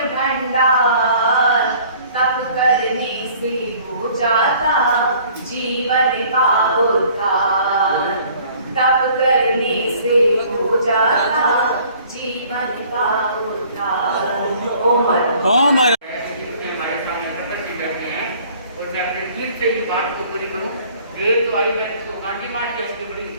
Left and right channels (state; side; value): inverted; both; correlation -0.54